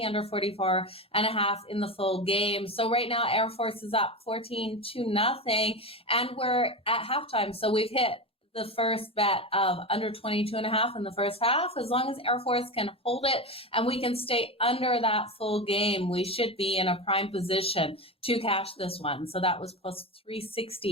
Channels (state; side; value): normal; both; correlation 0.21